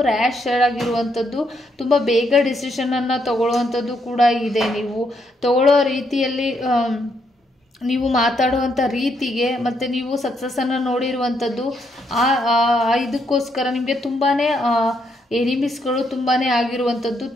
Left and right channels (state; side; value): normal; both; correlation 0.76